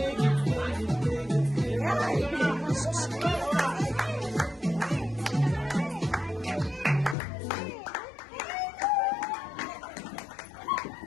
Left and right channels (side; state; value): right; drops out; at 7.2 s